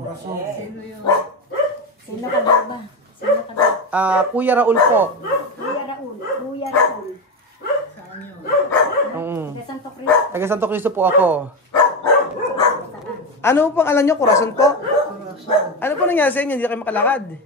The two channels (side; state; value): both; normal; correlation 0.16